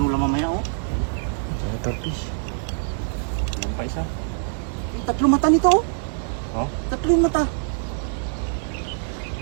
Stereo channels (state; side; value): silent; left; 63 dB below the other